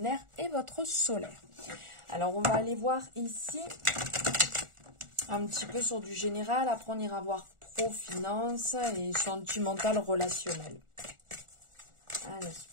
et votre solaire. Alors on va aller voir ici un petit peu sur du général. Après on ira voir pro, finance et sentimental, relationnel. Allez,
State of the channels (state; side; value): late; left; 1.4 ms